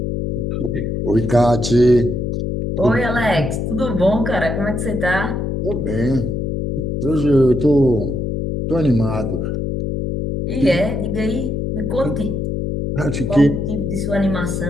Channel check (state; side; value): noise; left; hum, 2 dB below the sound